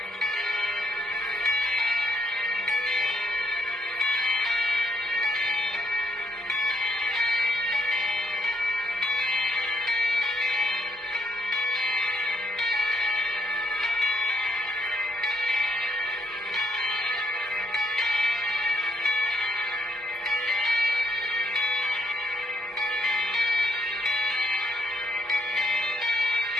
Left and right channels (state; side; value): normal; both; correlation 0.73